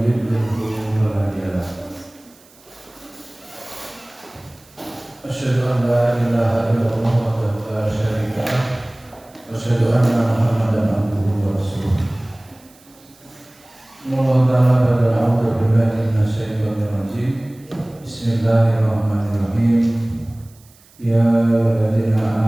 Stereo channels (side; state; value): right; noise; hiss, 28 dB below the sound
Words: yudlilhu fala hadiya lahu. Asyhadu an la ilaha illallah wahdahu la syarika lah wa asyhadu anna Muhammadan abduhu wa rasuluh. Bismillahirrahmanirrahim. Ya ayyuhalladzina